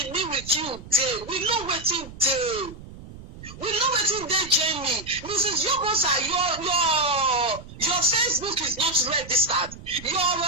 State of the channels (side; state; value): right; noise; rumble, 16 dB below the sound